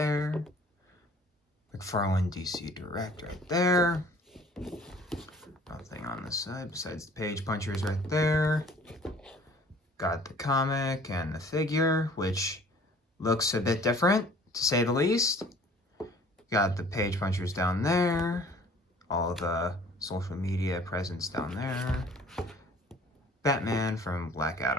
McFarlane DC Direct right there. Nothing on this side besides the page punchers right there. Got the comic and the figure, which looks a bit different, to say the least. Got the page punchers down there. All the social media presence down there. Batman from Black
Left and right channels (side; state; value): both; normal; correlation 0.52